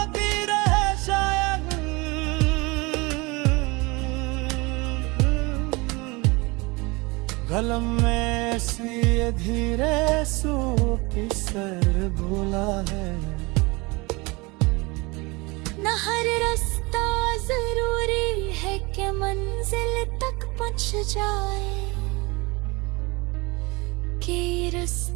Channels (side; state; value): left; quieter; 25.3 dB